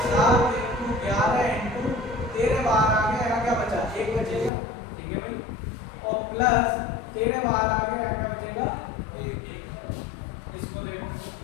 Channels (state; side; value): drops out; right; at 4.5 s